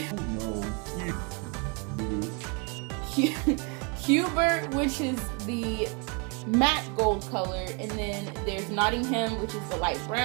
Hubert, which is the matte gold color, and then there's Nottingham, which is the light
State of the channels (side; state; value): left; quieter; 33.6 dB